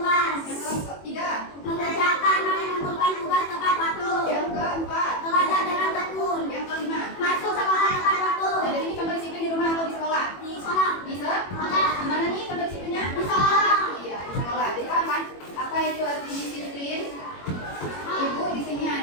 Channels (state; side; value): late; right; 21 ms